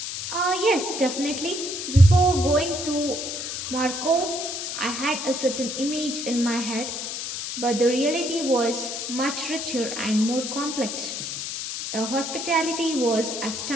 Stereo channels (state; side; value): noise; left; hiss, 5 dB below the sound